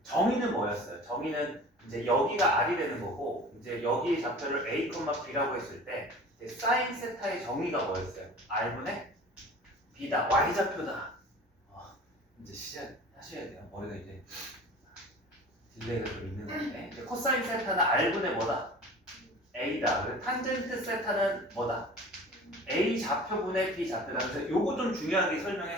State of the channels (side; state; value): both; normal; correlation 0.41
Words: 정의는 뭐였어요? 정의는 이제 여기가 R이 되는 거고 이제 여기 좌표를 A, B라고 했을 때 사인 세타의 정의가 뭐였어요? R분의 B다. Y좌표다. 이제 시작하셔야 돼요. 머리가 이제 딜레이가 좀 있는 건데 이제 코사인 세타는 R분의 뭐다? A다. 그리고 탄젠트 세타는 뭐다? A 좌표분의 B 좌표다. 그래서 요거 좀 중요하게